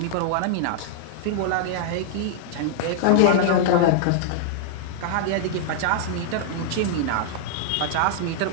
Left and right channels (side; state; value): both; different; correlation -0.01